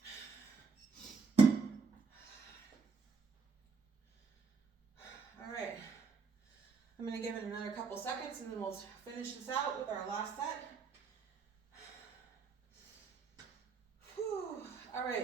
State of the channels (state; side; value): quieter; left; 5.0 dB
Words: All right. I'm going to give it another couple seconds and then we'll finish this out with our last set. Whew. All